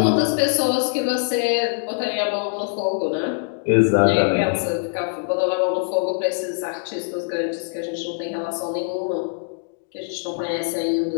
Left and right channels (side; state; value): right; silent; digital silence